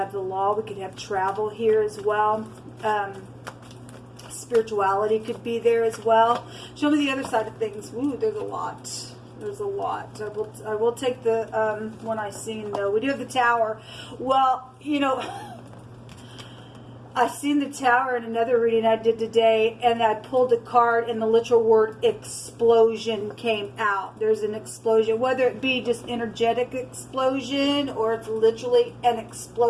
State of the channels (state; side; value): identical; both; correlation 1.00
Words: the law. We could have travel here as well. Spirituality could be there as well. Show me the other side of things. Ooh, there's a lot. There's a lot. I will take the one I seen though. We do have the tower. Well, you know, I seen the tower in another reading I did today, and I pulled a card, and the literal word explosion came out. There's an explosion, whether it be just energetic explosion or it's literally an